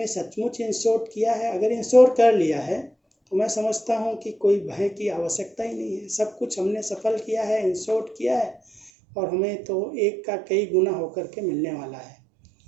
सचमुच इंश्योर किया है। अगर इंश्योर कर लिया है तो मैं समझता हूँ कि कोई भय की आवश्यकता ही नहीं है, सब कुछ हमने सफल किया है, इंश्योर किया है, और हमें तो एक का कई गुना होकर के मिलने वाला है।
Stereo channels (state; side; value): drops out; left; at 8.9 s